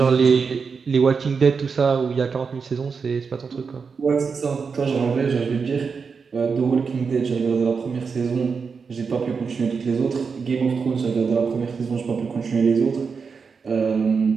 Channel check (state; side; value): quieter; left; 5.4 dB